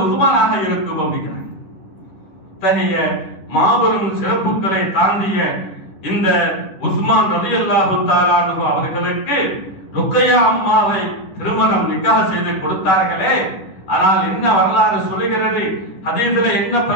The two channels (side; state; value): right; late; 10 ms